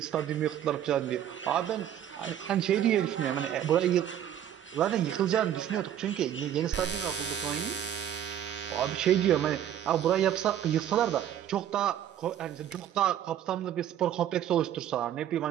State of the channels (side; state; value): left; quieter; 10.5 dB